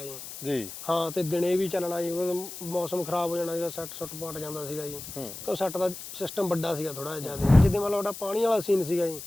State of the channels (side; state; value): left; noise; hiss, 11 dB below the sound